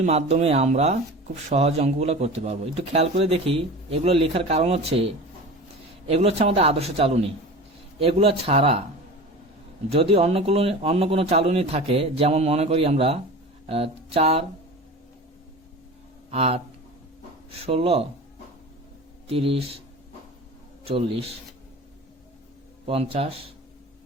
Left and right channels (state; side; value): normal; both; correlation 0.34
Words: মাধ্যমে আমরা খুব সহজ অঙ্কগুলো করতে পারবো। একটু খেয়াল করে দেখি, এগুলো লেখার কারণ হচ্ছে এগুলো হচ্ছে আমাদের আদর্শ চালনী। এগুলো ছাড়া যদি অন্য কোনো চালনী থাকে, যেমন মনে করি আমরা 4, 8, 16, 30, 40, 50